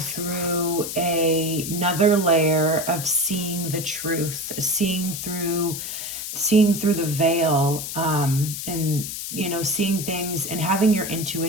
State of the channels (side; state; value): left; noise; hiss, 6 dB below the sound